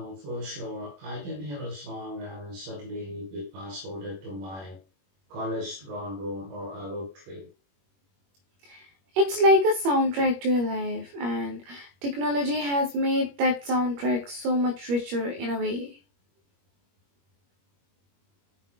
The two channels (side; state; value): left; late; 21 ms